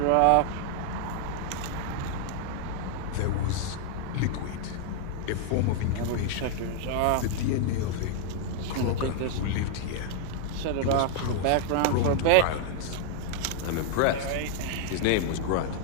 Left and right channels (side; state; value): both; different; correlation -0.01